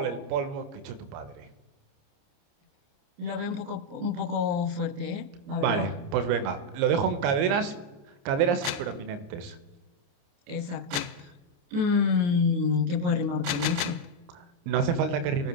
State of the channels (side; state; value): left; late; 29 ms